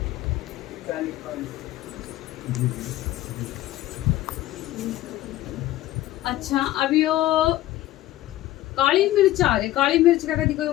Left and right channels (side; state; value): right; quieter; 15.3 dB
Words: अच्छा, अब यो काली मिर्च आ रही। काली मिर्च का कभी कोई